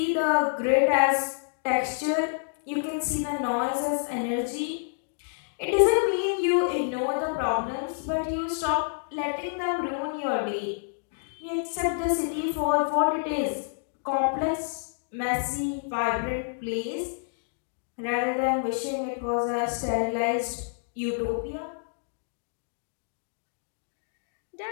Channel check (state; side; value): silent; right; digital silence